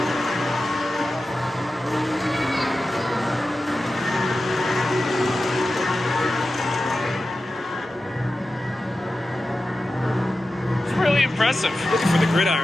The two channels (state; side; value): normal; both; correlation 0.93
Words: It's really impressive. Looking for the